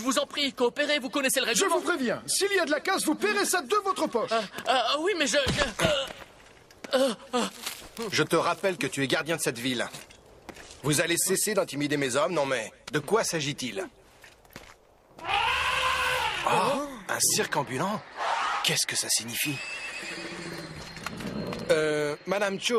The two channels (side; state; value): both; identical; correlation 1.00